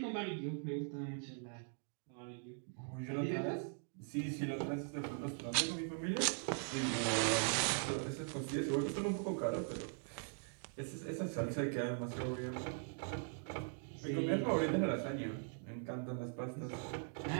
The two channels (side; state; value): left; silent; 50 dB below the other